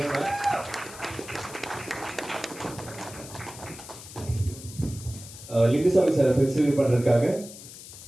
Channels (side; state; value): left; noise; hiss, 15 dB below the sound